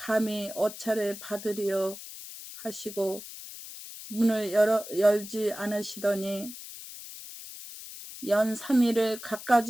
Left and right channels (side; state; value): left; noise; hiss, 13 dB below the sound